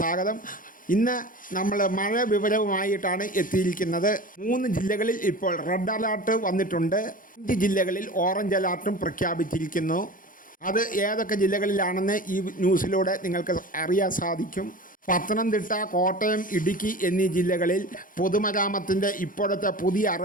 ഇന്ന് നമ്മൾ മഴ വിവരവുമായിട്ടാണ് എത്തിയിരിക്കുന്നത്. 3 ജില്ലകളിൽ ഇപ്പോൾ റെഡ് അലേർട്ട് വന്നിട്ടുണ്ട്. 5 ജില്ലകളിൽ ഓറഞ്ച് അലേർട്ടും പ്രഖ്യാപിച്ചിരിക്കുന്നു. അത് ഏതൊക്കെ ജില്ലകളിലാണെന്ന് ഈ ന്യൂസിലൂടെ നിങ്ങൾക്ക് അറിയാൻ സാധിക്കും. പത്തനംതിട്ട, കോട്ടയം, ഇടുക്കി എന്നീ ജില്ലകളിൽ പൊതുമരാമത്തിൻ്റെ ഇപ്പോഴത്തെ പുതിയ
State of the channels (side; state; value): right; late; 0.40 ms